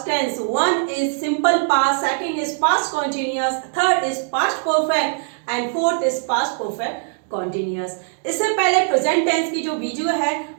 tense. One is simple past, second is past continuous, third is past perfect and fourth is past perfect continuous. इससे पहले प्रेजेंट टेंस की जो वीडियो है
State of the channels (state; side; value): silent; left; digital silence